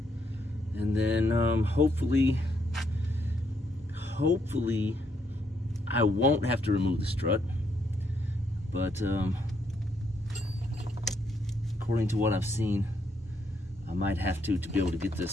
and then hopefully I won't have to remove the strut. But according to what I've seen, I might have to be able to get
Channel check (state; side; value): normal; both; correlation 0.74